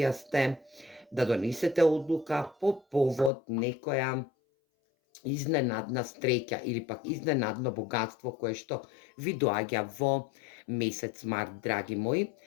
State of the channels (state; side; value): drops out; right; at 3.3 s